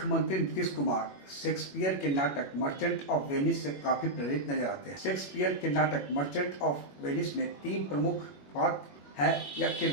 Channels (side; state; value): right; late; 21 ms